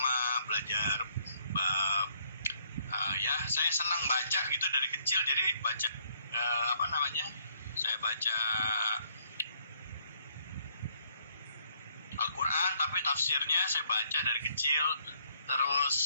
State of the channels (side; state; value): both; inverted; correlation -0.67